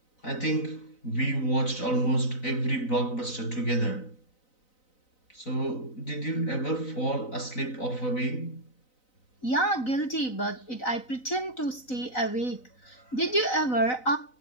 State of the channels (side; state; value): right; late; 4.0 ms